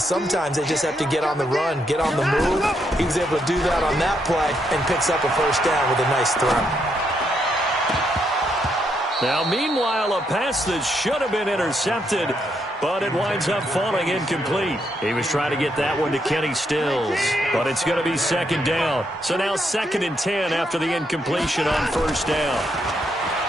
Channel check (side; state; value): both; normal; correlation 0.77